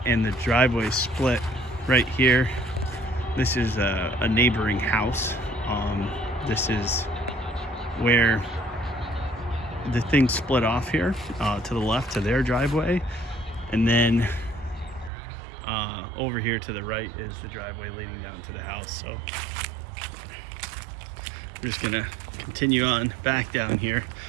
the driveway split right here. This is a neighboring house. This is where the thing split off here to the left to their driveway. And then over here to the right is the driveway leading down to the house. So we're just gonna continue on back down here.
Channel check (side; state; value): left; drops out; at 15.1 s